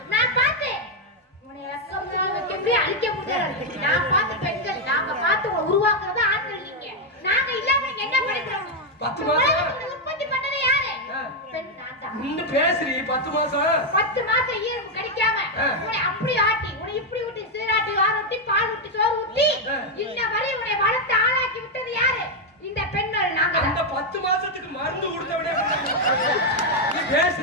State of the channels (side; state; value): both; normal; correlation 0.02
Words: நான் பார்த்தேன். உன்னை எக்கம்னா எப்படி அழிக்க முடியாது. நான் பார்த்த பெண்கள் நாங்க பார்த்து உருவாக்குறது ஆண்கள் நீங்க. நாங்க இல்லாம என்ன படிக்கிறோம்? 10 மாசம் உற்பத்தி பண்ணது யாரு? பெண் நான் தான். நின்று பேசுறீ 10 மாசம். 10 மாசம் ஈரம் கிடைக்காம உன்னை அப்படி ஆட்டி உன்னை இப்படி ஊட்டி சீராட்டி வாரூட்டி பால் ஊட்டி சோறு ஊட்டி இந்த வரை உன்னை வளர்த்து ஆளாக்கி விட்டது யாரு? இந்த பெண்கள் நாங்க. அந்த 10 மாசத்துக்கு மருந்து கொடுத்தவனே நீ